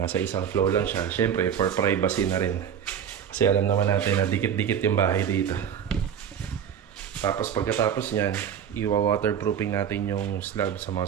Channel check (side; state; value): left; quieter; 8.5 dB